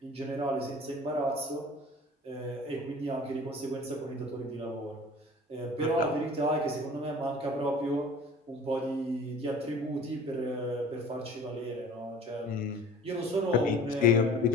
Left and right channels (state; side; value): normal; both; correlation 0.44